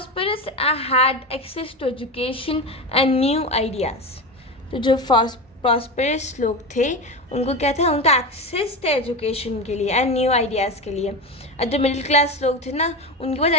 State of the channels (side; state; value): both; normal; correlation 0.21